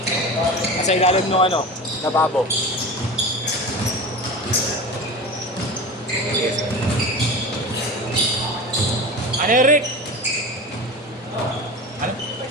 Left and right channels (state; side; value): normal; both; correlation 0.30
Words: Kasi ilalim nung ano, nababo. Ano yun, Rick? Ano?